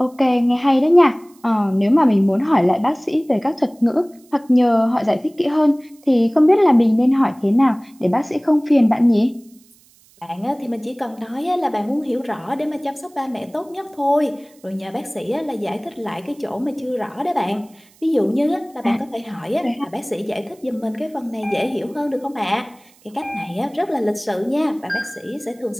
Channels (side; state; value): right; noise; hiss, 30 dB below the sound